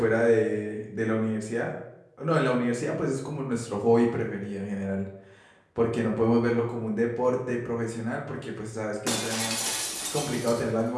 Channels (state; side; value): identical; both; correlation 1.00